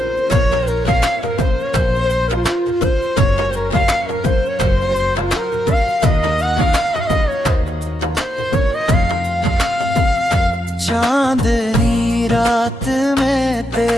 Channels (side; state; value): both; normal; correlation 0.82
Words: चांदनी रात में